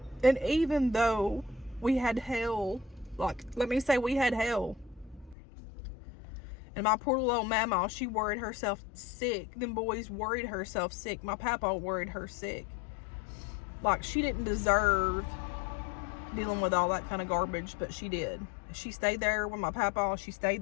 And even though we had hell, like, let me say we had hell. And my poor little old mama, she worried herself sick. Them boys worried herself sick. My papa worried her sick. Like, she didn't deserve dealing with all that kind of garbage, but she did. She stayed there with my papa. She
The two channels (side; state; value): right; drops out; at 5.4 s